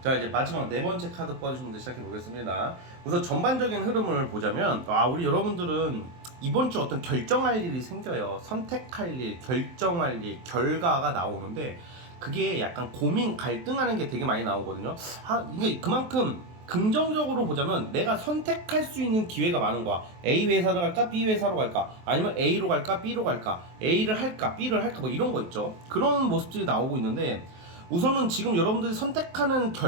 이제 마지막 네 번째 카드 뽑아주신 분들 시작해 보겠습니다. 우선 전반적인 흐름을 보자면, 우리 여러분들은 이번 주 어떤 결정할 일이 생겨요. 선택할 일, 결정할 일, 결과가 나오는데, 그게 약간 고민 갈등하는 게 되게 많이 나오거든요. 이게 그만큼 긍정적으로 보자면 내가 선택할 수 있는 기회가 많은 거야. A 회사로 갈까 B 회사로 갈까, 아니면 A로 갈까 B로 갈까, A를 할까 B를 할까, 뭐 이런 거 있죠. 그런 모습들이 나오고 있는데, 우선은 지금 여러분들이 선택하는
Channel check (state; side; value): late; left; 23 ms